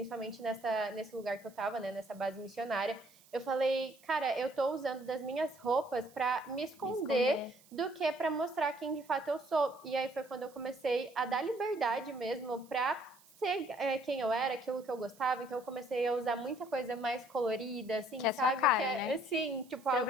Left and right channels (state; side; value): noise; right; hiss, 26 dB below the sound